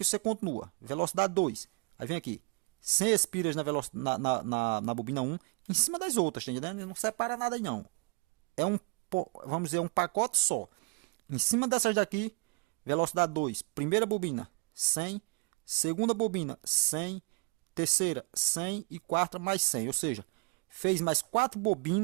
você continua. Velocidade 2. Aí vem aqui. 100 espiras na bobina 1. Em cima das outras, tá entendendo? Não separa nada aí não. É vamos dizer, um pacote só. Em cima dessas daqui, velocidade 2. Primeira bobina, 100. Segunda bobina, 100. Terceira, 100. E quarta, mais 100. Ou seja, fez mais 4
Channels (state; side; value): quieter; left; 31.1 dB